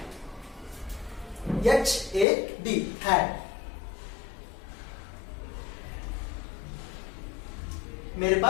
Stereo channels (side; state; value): right; drops out; at 2.2 s